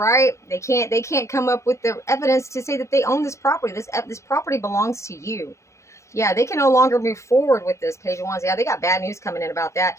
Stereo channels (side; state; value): right; late; 0.14 ms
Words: They can't come up with the evidence to say that they own this property. This property belongs to you. Yeah, they can no longer move forward with this, Page of Wands. Yeah, they got bad news coming in about that